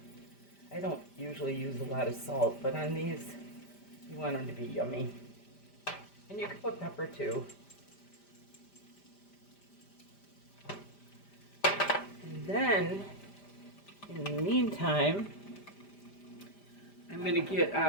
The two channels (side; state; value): right; late; 5.0 ms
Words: I don't usually use a lot of salt, but on these you want them to be yummy. And you can put pepper too. then, in the meantime, I'm going to get